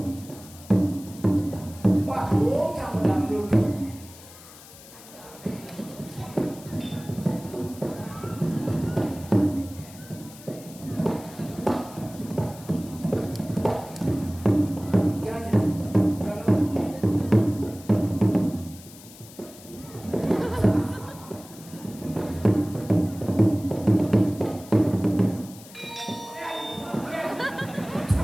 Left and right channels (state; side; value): noise; left; hiss, 19 dB below the sound